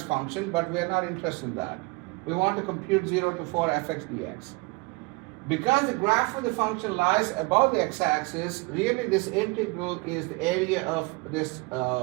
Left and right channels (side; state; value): left; quieter; 25.7 dB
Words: function, but we are not interested in that. We want to compute 0 to 4 fx dx. Because the graph of the function lies above the x-axis, really this integral is the area of this